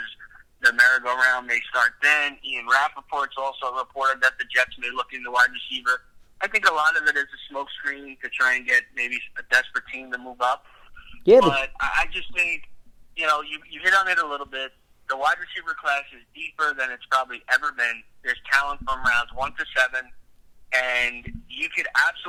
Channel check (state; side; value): identical; both; correlation 1.00